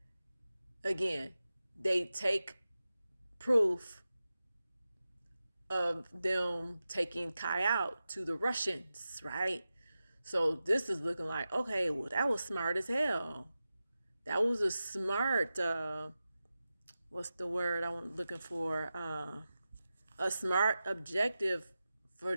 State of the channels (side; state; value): both; inverted; correlation -0.93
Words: again, they take proof of them taking Kai out to the Russians, right? So this is looking like, okay, well, that was smart as hell. That was a smart, what's the word I'm looking for? A smart objective for